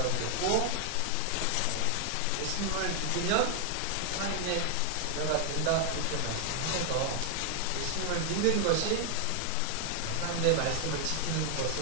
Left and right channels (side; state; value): both; different; correlation 0.00